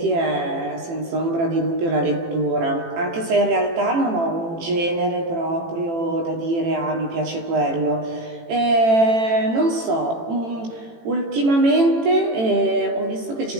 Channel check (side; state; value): left; late; 18 ms